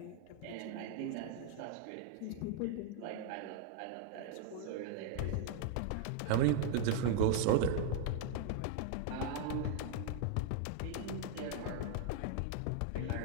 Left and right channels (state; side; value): different; both; correlation -0.01